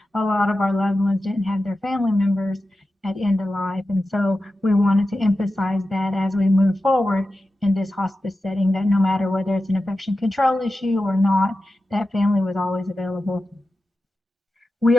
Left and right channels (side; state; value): both; normal; correlation 0.92